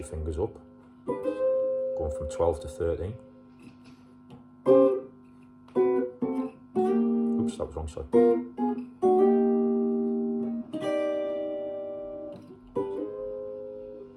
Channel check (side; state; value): both; identical; correlation 1.00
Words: fingers up, going from 12 to 13. Oops, that was wrong side.